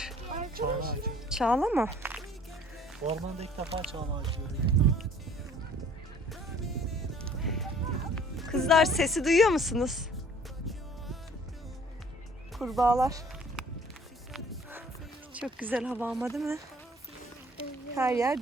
Çağla ağacı. Çağla mı? Ormanda ilk defa çağla ağacı görüyorum. Kızlar sesi duyuyor musunuz? Kurbağalar. Çok güzel hava ama değil mi? Her yer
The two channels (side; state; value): both; normal; correlation 0.54